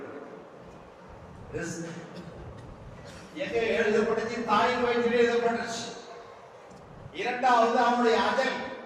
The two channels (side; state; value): both; identical; correlation 1.00